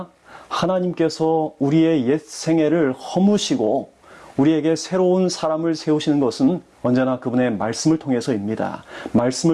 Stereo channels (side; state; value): both; identical; correlation 1.00